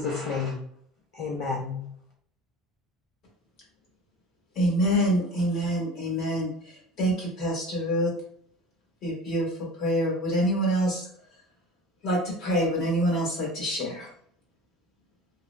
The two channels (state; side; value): normal; both; correlation 0.38